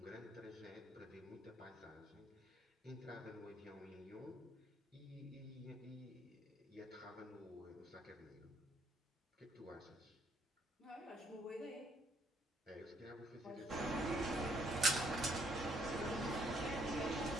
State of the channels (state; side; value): normal; both; correlation 0.68